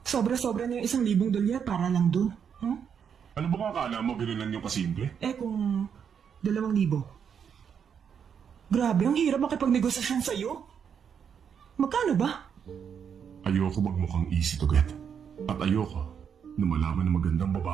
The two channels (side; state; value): left; quieter; 7.5 dB